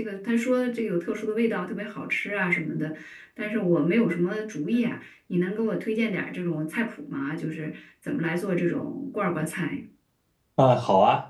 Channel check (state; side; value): identical; both; correlation 1.00